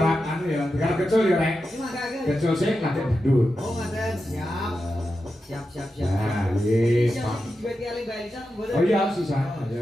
anu ya, tiga kecil ya, Rek. Iki mangkake. Kecil sih latih bedut. Oh, ngaten. Siap. Siap. Nah, yes, Pak. Duit ki Mbak Elisa mboten. Oh iya, sisa.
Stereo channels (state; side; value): normal; both; correlation 0.90